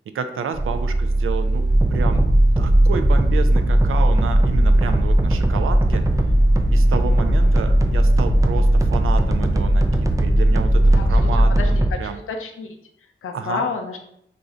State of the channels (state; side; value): normal; both; correlation 0.93